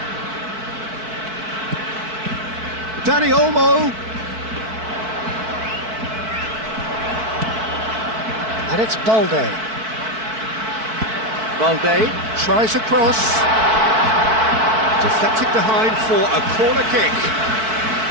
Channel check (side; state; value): left; late; 4.6 ms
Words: Dani Olmo. And it's Balde. Balde tries a cross. Deflected behind for a corner kick.